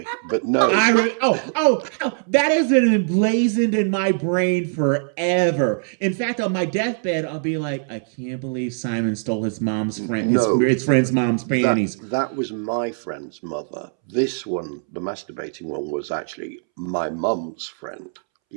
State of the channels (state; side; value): silent; left; 64 dB below the other